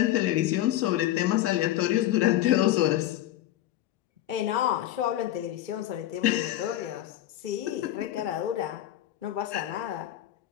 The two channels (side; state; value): right; quieter; 13.5 dB